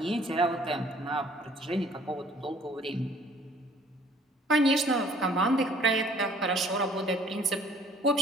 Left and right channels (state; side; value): normal; both; correlation 0.57